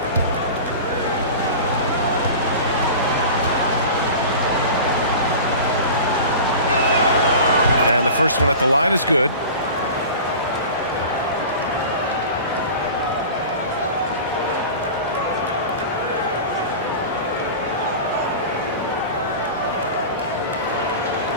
And the first one at the line is good.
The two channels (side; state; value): both; inverted; correlation -0.35